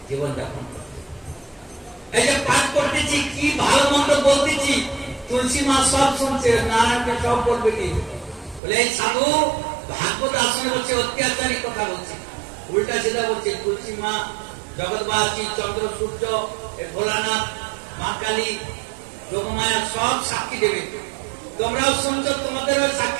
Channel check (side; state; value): left; drops out; at 8.6 s